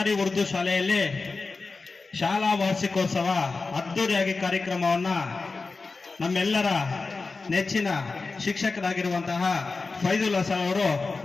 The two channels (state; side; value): quieter; right; 4.0 dB